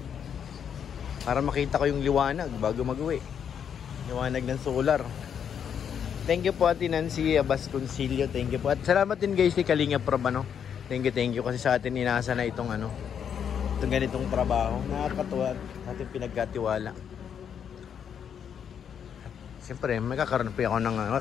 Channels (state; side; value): quieter; right; 8.0 dB